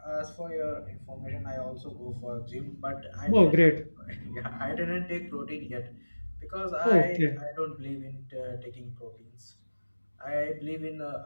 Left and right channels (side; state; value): both; inverted; correlation -1.00